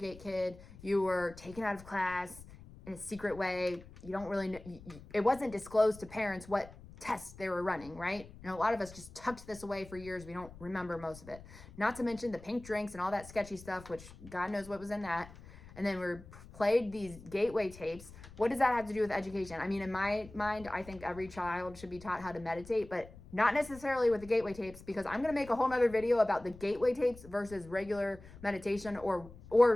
kid, you were taken out of class in a secret way. You don't really know, it wasn't disclosed to parents what tests they were running, right? And a lot of us just tucked this away for years. We don't remember most of it. Not to mention the pink drinks and all that sketchy stuff, which God knows what was in that. And then we played these Gateway tapes. What does that have to do with education? I mean, in my mind, I think every child should be taught how to meditate, but not necessarily with the Gateway tapes, because I'm going to make a whole nother video about the Gateway tapes versus regular meditation,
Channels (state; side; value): noise; left; rumble, 18 dB below the sound